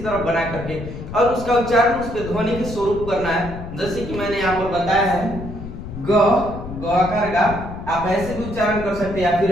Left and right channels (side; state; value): left; noise; rumble, 10 dB below the sound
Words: तरह बना करके, और उसका उच्चारण उसके ध्वनि के स्वरूप करना है। जैसे कि मैंने यहाँ पर बताया है ग आकार का, आप ऐसे भी उच्चारण कर सकते हैं या फिर